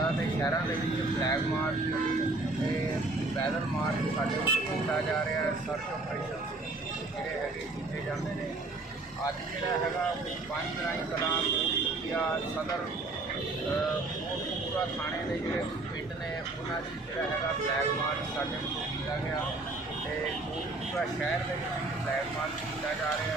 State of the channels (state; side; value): quieter; left; 3.1 dB